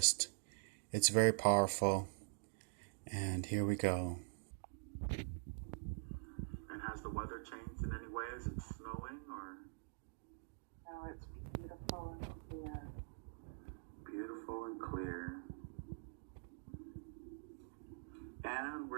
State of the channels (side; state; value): left; silent; digital silence